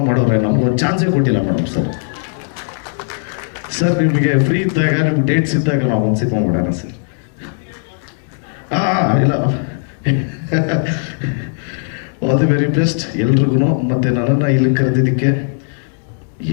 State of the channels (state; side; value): silent; right; digital silence